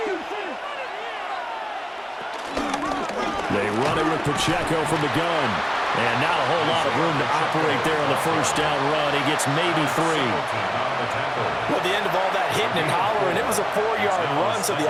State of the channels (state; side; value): identical; both; correlation 1.00